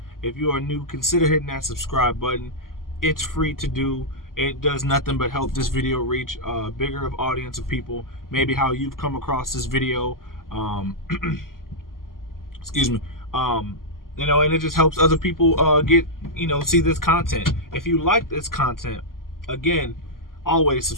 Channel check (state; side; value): late; right; 0.91 ms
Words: If you are new, consider hitting that subscribe button. It's free to do. It does nothing but help this video reach a bigger of audience of people. Maybe how you've come across this video. Excuse me. And it just helps other people get, see this content. If you like this content, again, always